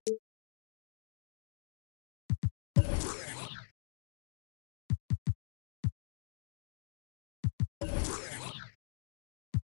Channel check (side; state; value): right; silent; digital silence